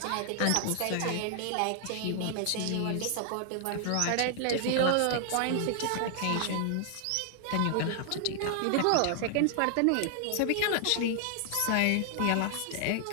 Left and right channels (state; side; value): different; both; correlation 0.00